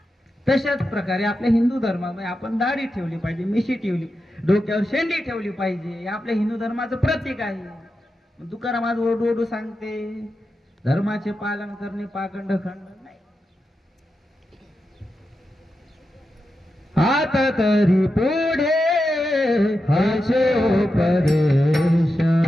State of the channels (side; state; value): both; normal; correlation 0.89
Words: तशाच प्रकारे आपल्या हिंदू धर्मामध्ये आपण दाढी ठेवली पाहिजे, मिशी ठेवली, डोक्यावर शेंडी ठेवली पाहिजे. हे आपल्या हिंदू धर्माचं प्रतीक आहे. तुकाराम आज ओरडू सांगते, धर्माचे पालन करणे पाखंड खंड नाही. आता तरी पुढे हाचे उपदेश,